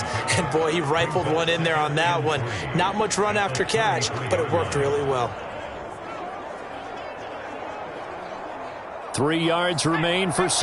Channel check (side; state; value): both; identical; correlation 1.00